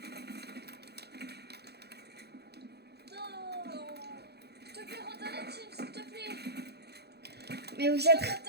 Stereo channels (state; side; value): late; left; 0.48 ms